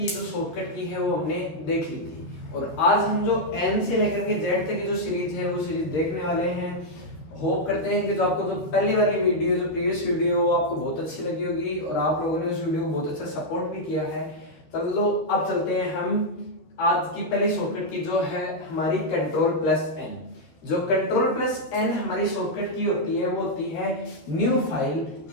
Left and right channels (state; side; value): late; right; 12 ms